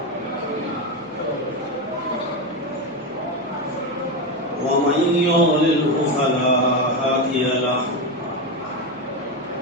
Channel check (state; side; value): noise; left; hum, 29 dB below the sound